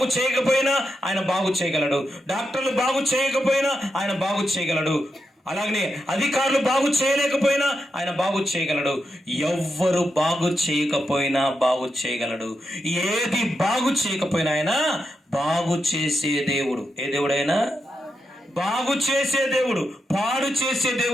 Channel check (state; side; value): normal; both; correlation 0.85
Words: చేయకపోయినా ఆయన బాగు చేయగలడు. డాక్టర్లు బాగు చేయకపోయినా ఆయన బాగు చేయగలడు. అలాగనే అధికారులు బాగు చేయలేకపోయినా ఆయన బాగు చేయగలడు. ఎవ్వరు బాగు చేయకపోయినా బాగు చేయగలడు. ఏది బాగు చేయకపోయినా ఆయన బాగు చేసే దేవుడు. ఏ దేవుడైనా బాగు చేసే దేవుడు, పాడు చేసే